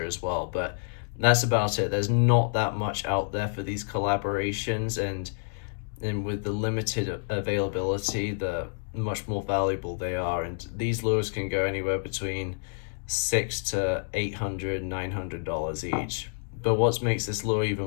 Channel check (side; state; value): right; silent; 59 dB below the other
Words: as well. But that's about it. There's not that much out there for these collaborations, and with the limited availability, the much more valuable they are. And these lures can go anywhere between $600 to $800, $900 each. But what makes this lure even